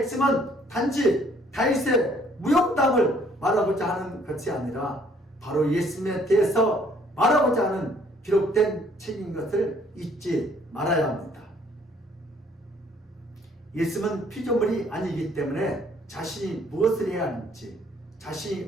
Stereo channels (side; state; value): both; normal; correlation 0.62